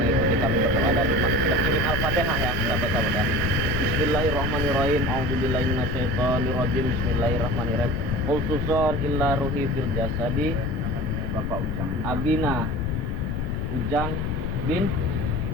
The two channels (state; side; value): noise; left; rumble, 1 dB below the sound